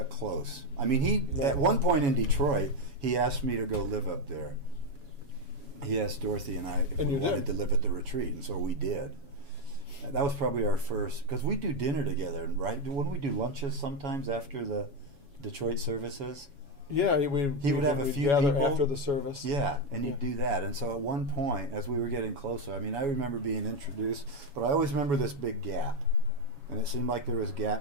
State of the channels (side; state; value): left; late; 7.1 ms